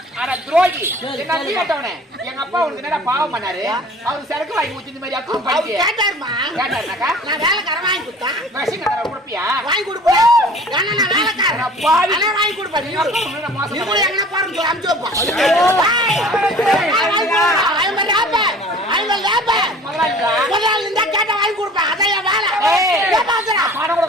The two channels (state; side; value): normal; both; correlation 0.47